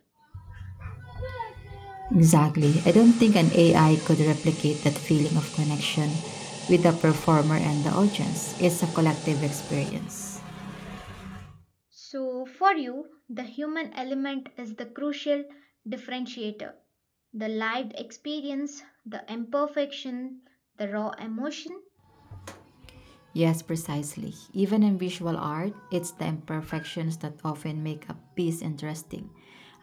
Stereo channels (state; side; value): identical; both; correlation 1.00